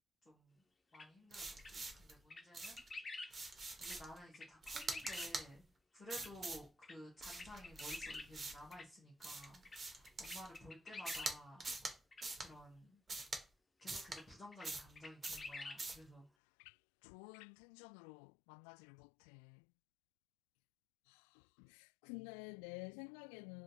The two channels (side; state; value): right; drops out; at 16.3 s